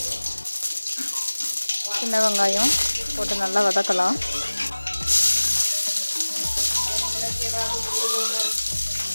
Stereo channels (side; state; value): both; inverted; correlation -1.00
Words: சின்ன வெங்காயம் போட்டு நல்லா வதக்கலாம்.